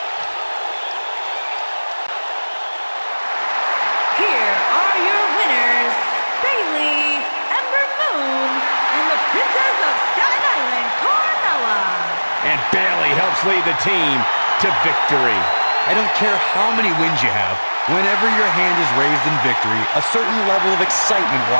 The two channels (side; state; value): both; inverted; correlation -1.00